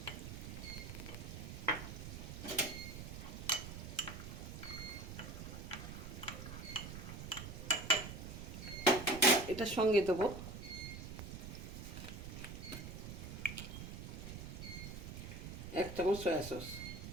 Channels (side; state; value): right; noise; rumble, 8 dB below the sound